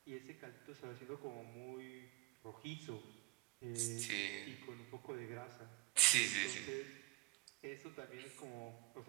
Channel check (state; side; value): quieter; left; 20.6 dB